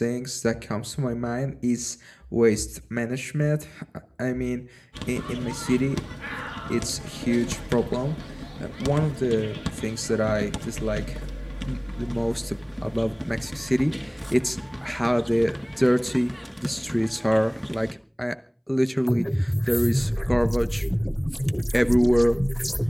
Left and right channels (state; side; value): identical; both; correlation 1.00